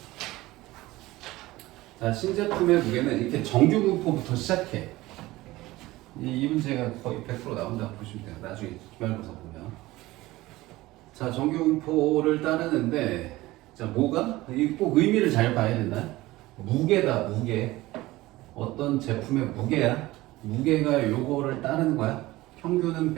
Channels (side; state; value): left; quieter; 18.5 dB